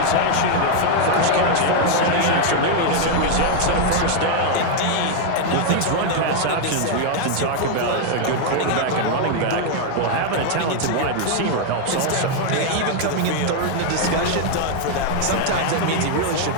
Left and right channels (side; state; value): both; different; correlation 0.00